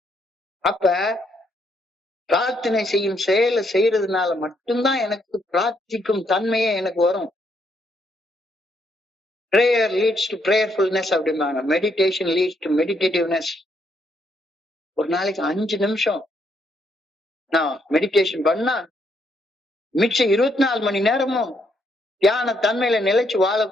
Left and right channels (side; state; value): both; normal; correlation 0.74